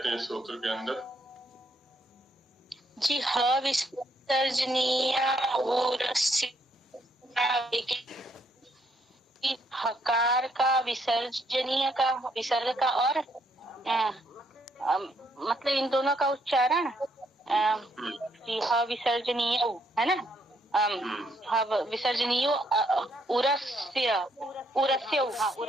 हैं सूत्र के अंदर? जी, ह विसर्जनीया उरस्या हकार का विसर्जनीय का विसर्ग का और मतलब इन दोनों का उच्चारण जी ह विसर्जनीय है ना, विसर्जनीय उरस्य उरस्य हाँ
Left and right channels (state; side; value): normal; both; correlation 0.72